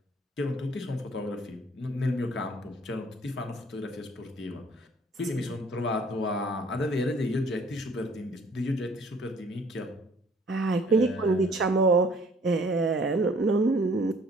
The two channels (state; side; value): normal; both; correlation 0.57